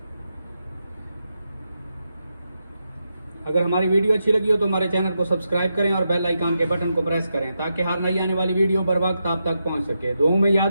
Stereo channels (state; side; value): inverted; both; correlation -0.86